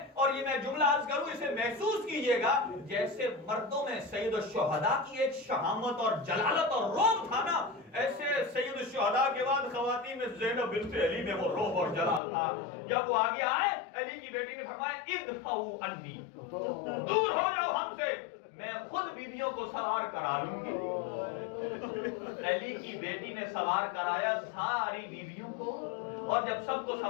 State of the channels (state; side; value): drops out; right; at 12.2 s